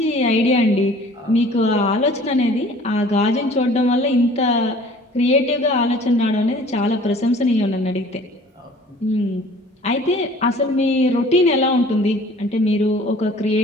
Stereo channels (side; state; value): both; normal; correlation 0.50